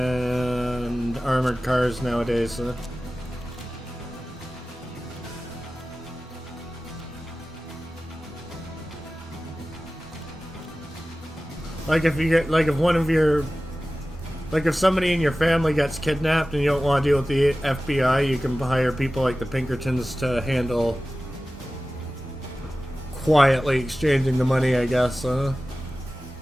armored cars nowadays. Like if you get, like if one of your, like if somebody in your family gets kidnapped and you don't want to deal with the FBI, you can hire people like the Pinkertons to handle quietly exchanging the money, I guess.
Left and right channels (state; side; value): normal; both; correlation 0.96